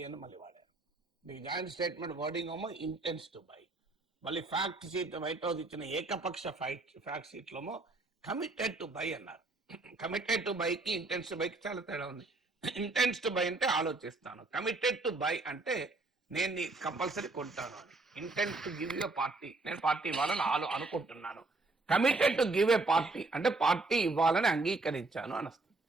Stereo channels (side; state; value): left; quieter; 3.3 dB